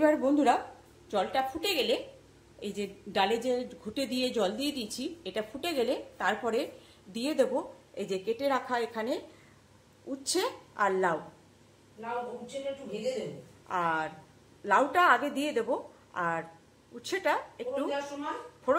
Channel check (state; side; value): identical; both; correlation 1.00